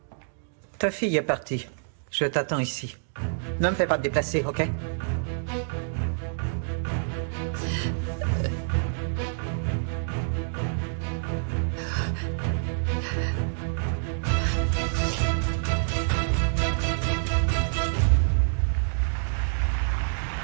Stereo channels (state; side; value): silent; left; digital silence